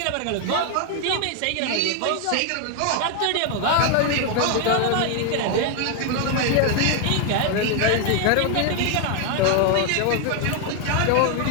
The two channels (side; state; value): both; different; correlation 0.01